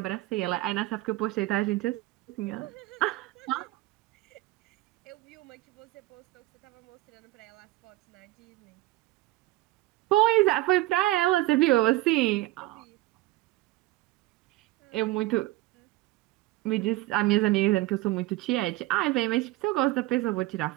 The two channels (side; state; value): left; quieter; 18.2 dB